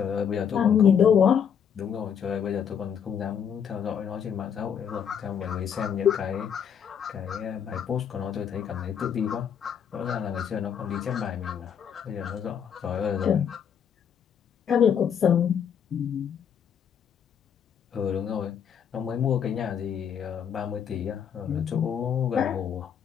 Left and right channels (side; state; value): right; quieter; 8.0 dB